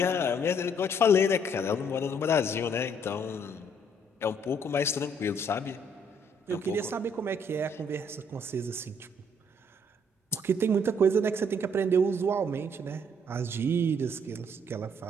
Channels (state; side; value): normal; both; correlation 0.66